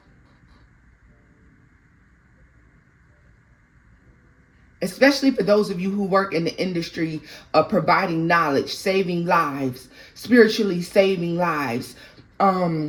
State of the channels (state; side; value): identical; both; correlation 1.00